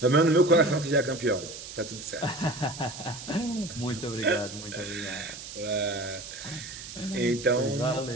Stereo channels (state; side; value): noise; right; hiss, 12 dB below the sound